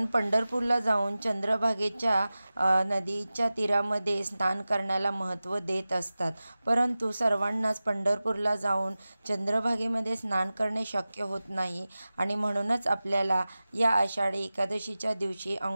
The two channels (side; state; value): both; inverted; correlation -0.96